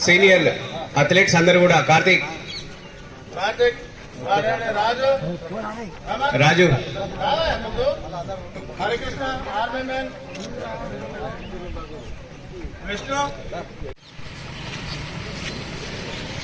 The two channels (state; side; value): identical; both; correlation 1.00